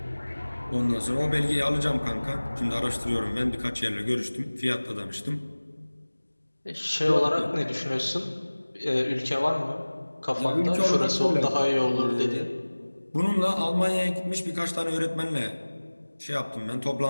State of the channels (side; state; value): both; inverted; correlation -1.00